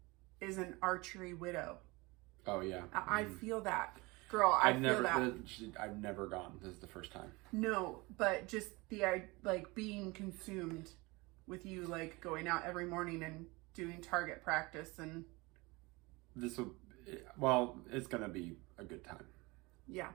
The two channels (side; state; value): left; quieter; 24.2 dB